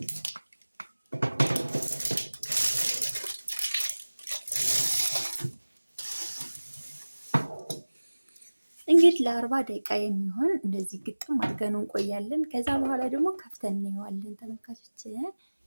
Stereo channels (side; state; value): both; inverted; correlation -1.00